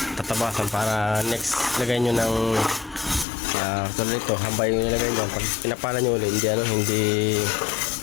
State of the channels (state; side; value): drops out; right; at 3.2 s